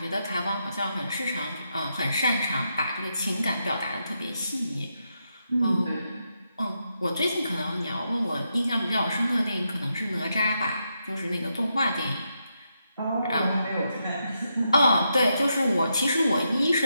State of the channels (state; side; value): inverted; both; correlation -0.83